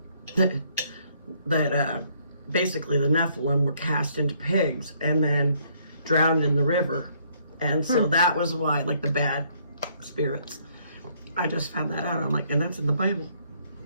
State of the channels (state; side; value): inverted; both; correlation -0.66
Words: that basically the Nephilim were cast into pigs and then drowned in the river. And so that was why, like, the bad spirits. I just found that out. I'm like, and that's in the Bible.